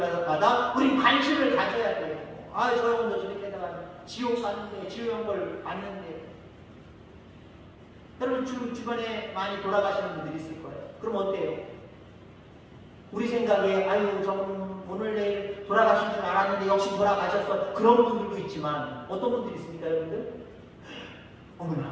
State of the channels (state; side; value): identical; both; correlation 1.00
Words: 우린 관심을 가져야 돼요. 아, 저 영혼도 저렇게 다가 지옥 가는데, 지옥 걸 봤는데. 여러분 주변에 많이 돌아가시는 분들이 있을 거예요. 그럼 어때요? 우리 생각에 아유, 저분 오늘 내일 돌아가신 줄 알았는데 역시 돌아가셨어. 그런 분들도 있지만 어떤 분들이 있습니까, 여러분들?